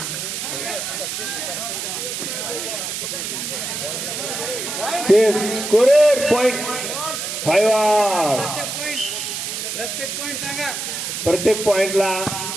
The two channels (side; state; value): right; noise; hiss, 4 dB below the sound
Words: Scorer point 5. प्रत्येक पॉइंटला